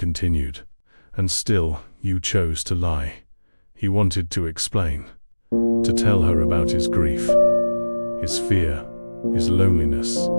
"and still you chose to lie." He wanted to explain, to tell her about his grief, his fear, his loneliness,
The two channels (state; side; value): inverted; both; correlation -1.00